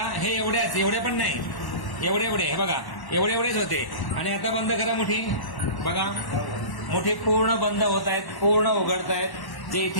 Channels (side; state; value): right; late; 1.1 ms